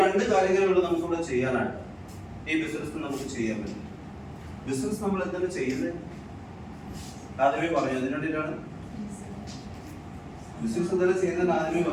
2 കാര്യങ്ങളുള്ള നമുക്ക് ഇവിടെ ചെയ്യാനായിട്ട് ഈ ബിസിനസ് നമുക്ക് ചെയ്യാൻ പറ്റും. ബിസിനസ് നമ്മൾ എന്താണ് ചെയ്യുന്നത്? ആദ്യമേ പറഞ്ഞു. അതിന് വേണ്ടിയിട്ടാണ് ബിസിനസ് എന്താണ് ചെയ്യുന്നത്. ആദ്യമേ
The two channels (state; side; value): identical; both; correlation 1.00